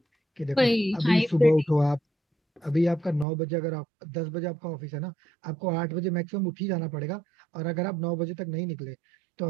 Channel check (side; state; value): left; drops out; at 3.2 s